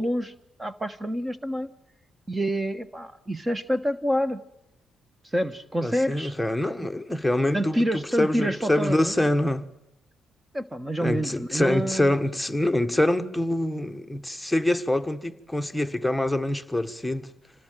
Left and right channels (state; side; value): normal; both; correlation 0.95